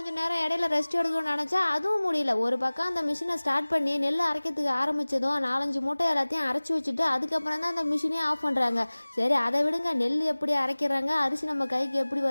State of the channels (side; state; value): both; inverted; correlation -1.00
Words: நேரம் இடையில ரெஸ்ட் எடுக்கணும்னு நினச்சா அதுவும் முடியல. ஒரு பக்கம் அந்த மிஷினை ஸ்டார்ட் பண்ணி நெல் அரைக்கிறதுக்கு ஆரம்பித்ததும் 4-5 மூட்டை எல்லாத்தையும் அரைச்சி வச்சுட்டு அதுக்கப்புறம் தான் அந்த மிஷினே ஆஃப் பண்ணுறாங்க. சரி அதை விடுங்க, நெல் எப்படி அரைக்கிறாங்க, அரிசி நம்ம கைக்கு எப்படி